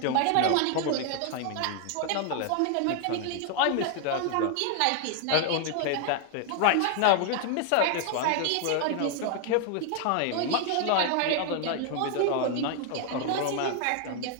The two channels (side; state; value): both; different; correlation 0.00